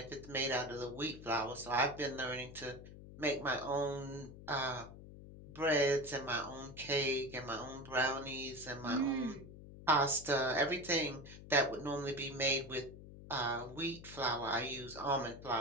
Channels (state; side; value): noise; left; hum, 15 dB below the sound